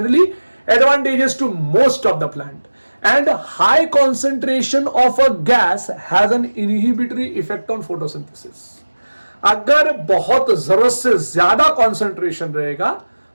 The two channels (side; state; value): both; inverted; correlation -1.00